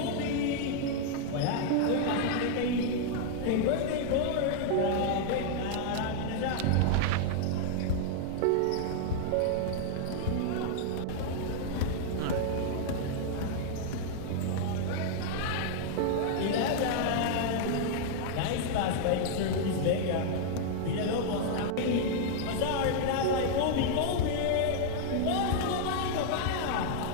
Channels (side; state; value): both; different; correlation 0.00